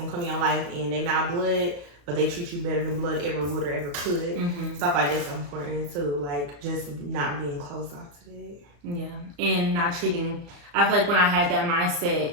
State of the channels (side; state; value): left; late; 35 ms